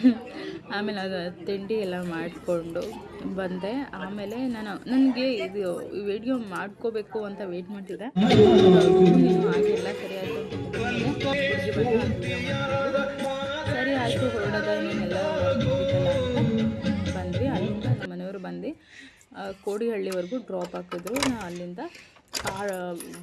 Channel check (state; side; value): identical; both; correlation 1.00